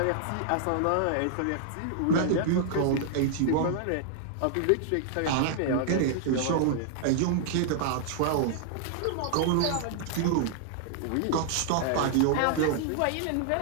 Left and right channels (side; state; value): both; different; correlation -0.01